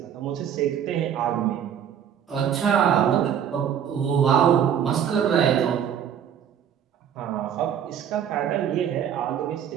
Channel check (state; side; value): quieter; left; 8.9 dB